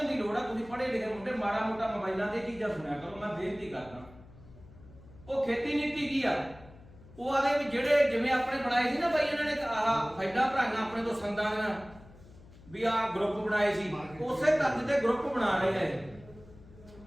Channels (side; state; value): left; noise; hum, 21 dB below the sound